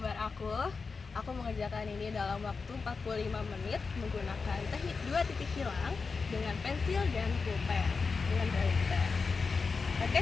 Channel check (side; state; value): right; quieter; 4.7 dB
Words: aku. Aku mengerjakan ini dalam waktu 45 menit menggunakan teknik 2 titik hilang dengan pensil dan pulpen dengan pulpen. Oke,